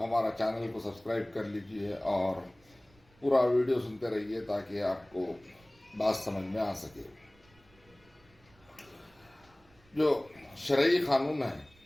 چینل کو سبسکرائب کر لیجئے اور پورا ویڈیو سنتے رہیے تاکہ آپ کو بات سمجھ میں آ سکے۔ جو شرعی قانون ہے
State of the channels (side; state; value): right; noise; rumble, 29 dB below the sound